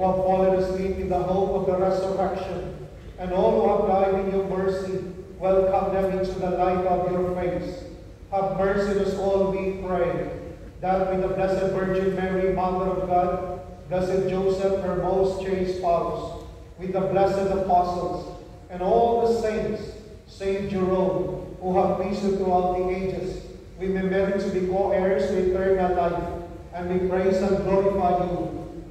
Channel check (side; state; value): both; identical; correlation 1.00